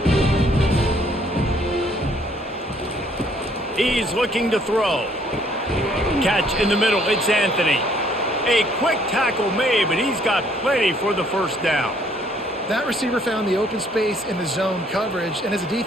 He's looking to throw. Catch in the middle. It's Anthony. A quick tackle made, but he's got plenty for the first down. That receiver found the open space in the zone coverage, and as a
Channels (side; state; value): both; normal; correlation 0.64